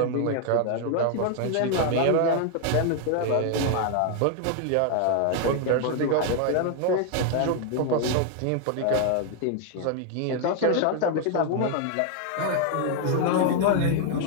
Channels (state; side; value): different; both; correlation 0.00